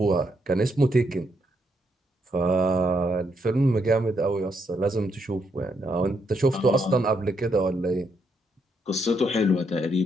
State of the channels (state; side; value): normal; both; correlation 0.77